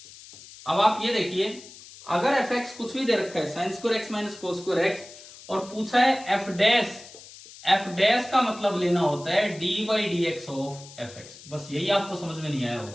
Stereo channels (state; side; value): noise; left; hiss, 18 dB below the sound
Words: अब आप ये देखिए, अगर fx कुछ भी दे रखा है, sin square x minus cos square x, और पूछा है f डैश का मतलब लेना होता है d by dx of fx. बस यही आपको समझ में नहीं आया